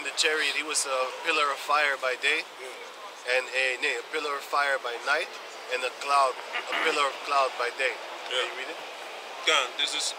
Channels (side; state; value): both; identical; correlation 1.00